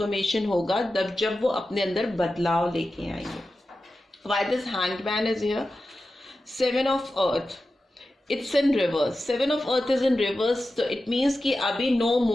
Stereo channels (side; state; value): both; normal; correlation 0.92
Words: होगा, जब वो अपने अंदर बदलाव लेके आएंगे। Why this hanged man is here? 7 of earth, it's in reverse. 7 of earth is in reverse, तो it means कि अभी no